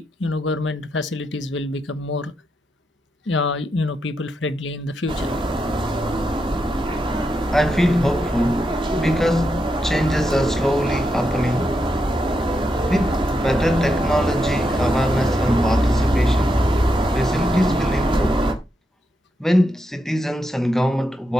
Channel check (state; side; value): normal; both; correlation 0.84